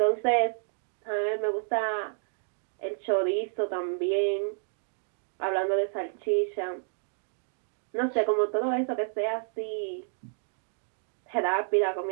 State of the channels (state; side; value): silent; left; digital silence